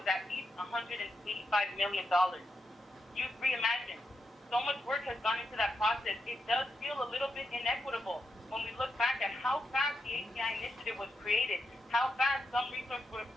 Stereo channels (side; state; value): both; normal; correlation 0.85